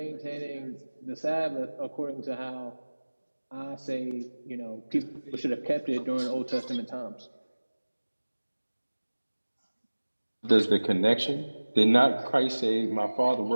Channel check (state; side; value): inverted; both; correlation -1.00